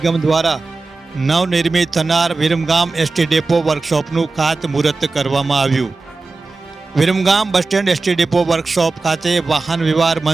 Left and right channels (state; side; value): quieter; left; 3.7 dB